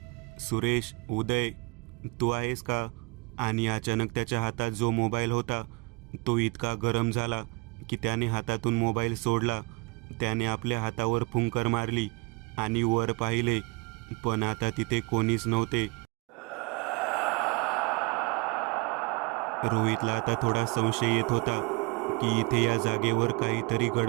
सुरेश, उदय, तू आहेस का? आणि अचानक त्याच्या हातात जो मोबाईल होता तो इतका गरम झाला की त्याने हातातून मोबाईल सोडला. त्याने आपल्या हातावर फुंकर मारली आणि वर पाहिले, पण आता तिथे कोणीच नव्हते. रोहितला आता थोडा संशय येत होता की इथे या जागेवर काहीतरी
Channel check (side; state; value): left; quieter; 26.1 dB